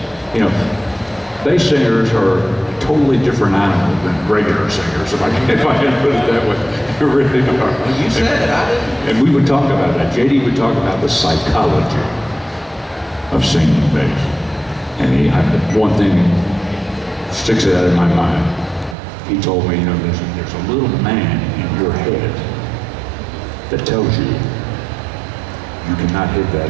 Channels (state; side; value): drops out; left; at 18.9 s